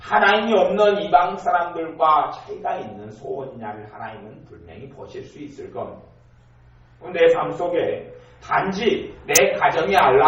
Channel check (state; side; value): identical; both; correlation 1.00